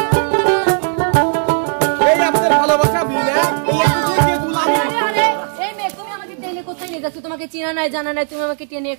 তোমাকে চিনা নাই জানা নাই, তুমি আমাকে টেনে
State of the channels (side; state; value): left; silent; 68 dB below the other